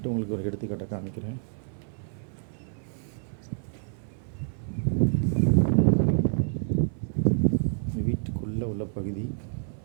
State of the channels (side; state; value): left; silent; 59 dB below the other